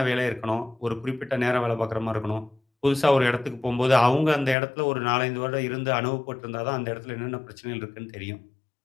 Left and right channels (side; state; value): right; drops out; at 4.5 s